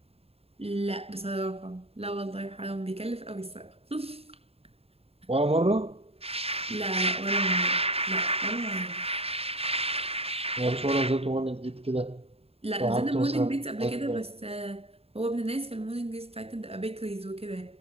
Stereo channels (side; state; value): left; late; 0.29 ms